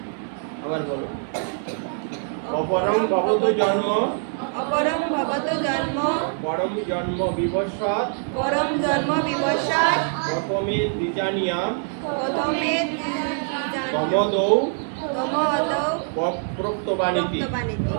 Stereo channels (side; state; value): left; silent; 63 dB below the other